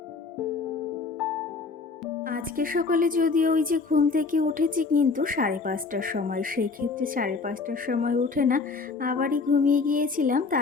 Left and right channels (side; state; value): right; quieter; 4.4 dB